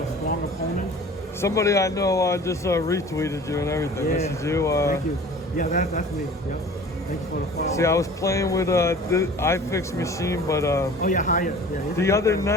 strong opponents. Somebody I know just retweeted you and everything. Yeah. This is you. Thank you. Yeah, that's me. Yep. Thanks for the follow. See, I was playing with the iFix machine, but oh yeah, Hyatt. Yeah. The other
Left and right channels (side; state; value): both; normal; correlation 0.44